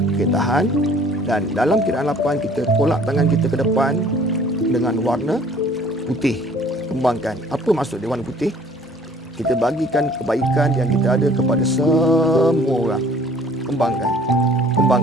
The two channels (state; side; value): normal; both; correlation 0.54